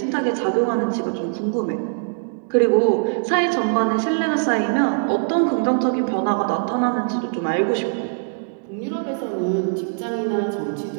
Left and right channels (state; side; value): silent; left; digital silence